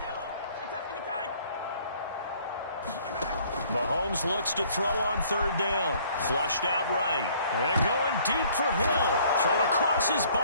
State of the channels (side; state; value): both; inverted; correlation -0.59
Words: Mahomes looks to throw on third down. Flushed out right. And going deep for Hill. Thrown across his